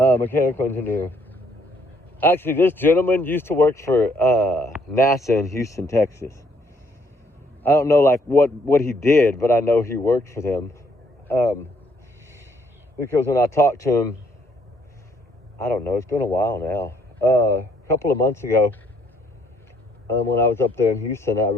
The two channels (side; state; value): both; normal; correlation 0.67